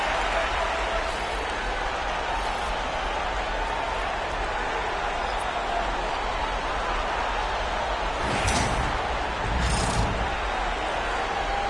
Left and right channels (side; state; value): both; identical; correlation 1.00